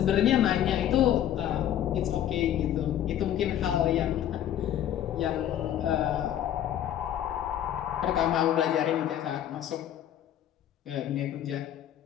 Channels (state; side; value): quieter; right; 11.0 dB